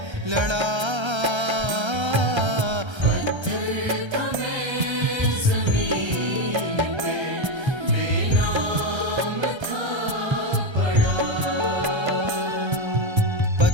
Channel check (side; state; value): left; late; 1.3 ms